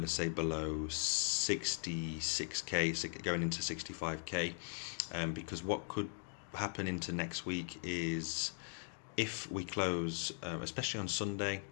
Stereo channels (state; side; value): silent; right; 51 dB below the other